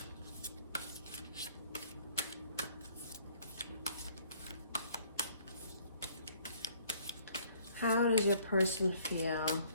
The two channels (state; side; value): inverted; both; correlation -0.60